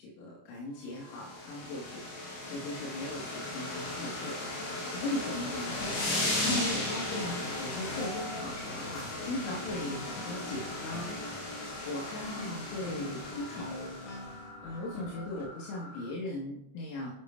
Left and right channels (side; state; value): right; late; 28 ms